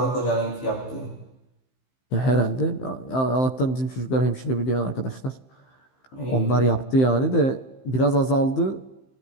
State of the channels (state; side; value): late; right; 15 ms